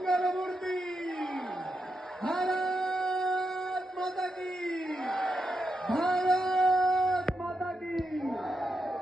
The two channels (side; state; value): both; normal; correlation 0.85